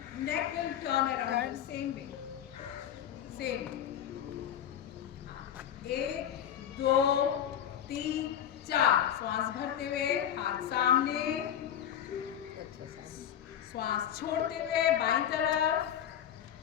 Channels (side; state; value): right; quieter; 9.9 dB